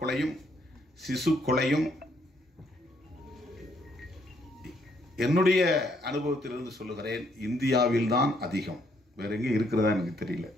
கொலையும் சிசு கொலையும் என்னுடைய அனுபவத்திலிருந்து சொல்லுகிறேன், இந்தியாவில் தான் அதிகம். வேற எங்கே இருக்கிறதா எனக்கு தெரியல.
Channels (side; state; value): both; normal; correlation 0.71